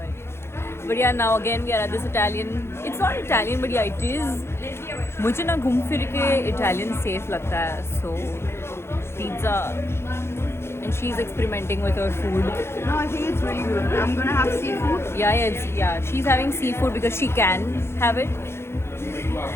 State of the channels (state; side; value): late; right; 0.12 ms